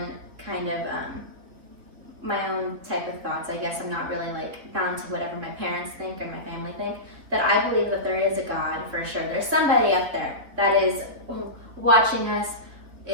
kind of my own type of thoughts, I guess I'm not really like bound to whatever my parents think or my family think, that I believe that there is a God for sure. There's somebody up there that is watching us,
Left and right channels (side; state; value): left; late; 3.9 ms